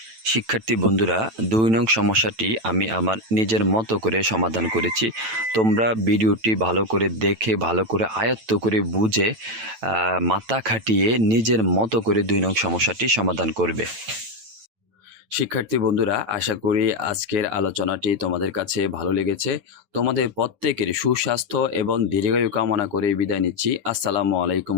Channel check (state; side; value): late; left; 9.0 ms